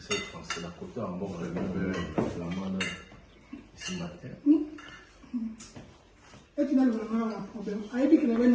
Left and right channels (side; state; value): both; identical; correlation 1.00